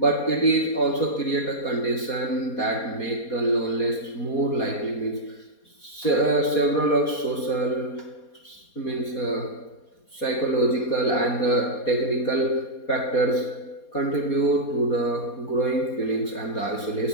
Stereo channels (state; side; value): late; right; 4.2 ms